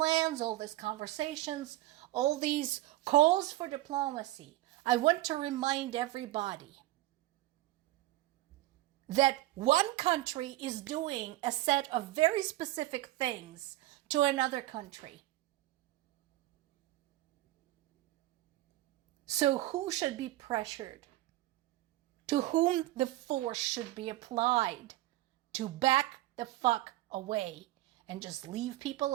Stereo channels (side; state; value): left; quieter; 16.8 dB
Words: all these conversations, all these calls for diplomacy, I want to remind everybody that one country is doing a set of very specific things to another country. So who should be pressured? To whom the force should be applied to back the fuck away and just leave people